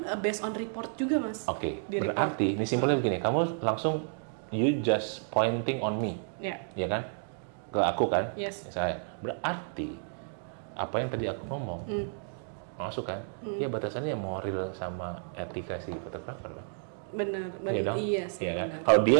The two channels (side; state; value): left; silent; digital silence